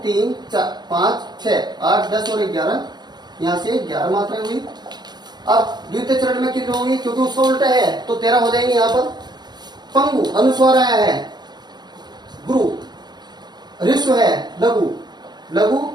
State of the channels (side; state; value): left; late; 0.21 ms